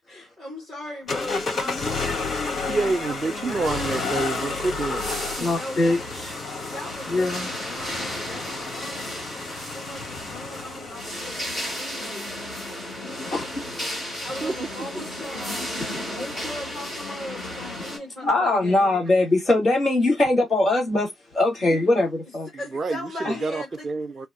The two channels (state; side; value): normal; both; correlation 0.81